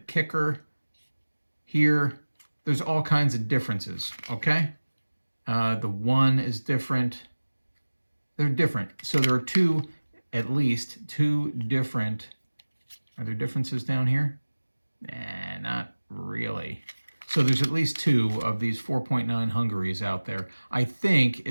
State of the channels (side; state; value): both; inverted; correlation -1.00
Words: here. There's all kinds of differences, okay? The 1 is different. They're different. So there are at least two different, are there differences down here? Nah, not really. So there's at least 2 of these 4.9 Hungaries out there. I think